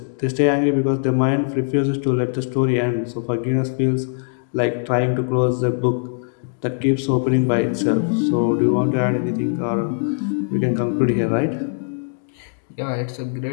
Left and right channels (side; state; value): right; silent; digital silence